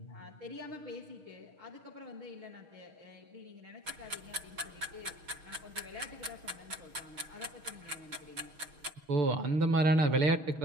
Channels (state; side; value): late; left; 6.4 ms